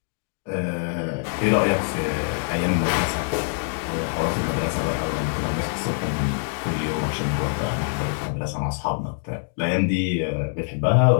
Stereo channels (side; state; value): right; silent; digital silence